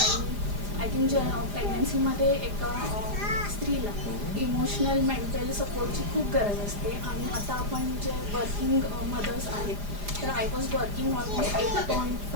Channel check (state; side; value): late; left; 4.9 ms